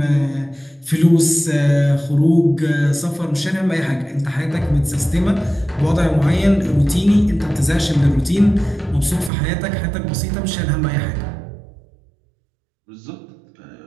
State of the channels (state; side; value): drops out; left; at 9.3 s